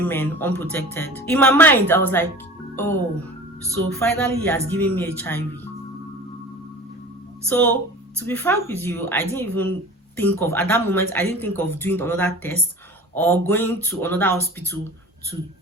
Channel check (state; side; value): normal; both; correlation 0.39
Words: unprotected. In my mind, I was like, oh, so finally he has given me HIV. So to be frank with you, I didn't even think of, at that moment, I didn't think of doing another test or going to another hospital to